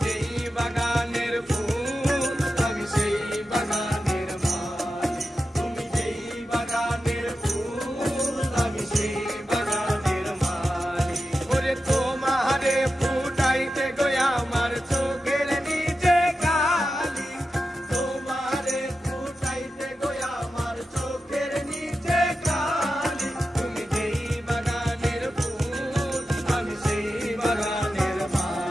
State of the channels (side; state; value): both; normal; correlation 0.91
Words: যেই বাগানের ফুল আমি সেই বাগানের মালি তুমি যেই বাগানের ফুল আমি সেই বাগানের মালি ওরে তোমারে ফুটাইতে গয়া আমার চোখের নিচে কালি তোমারে ফুটাইতে গয়া আমার চোখের নিচে কালি তুমি যেই বাগানের ফুল আমি সেই বাগানের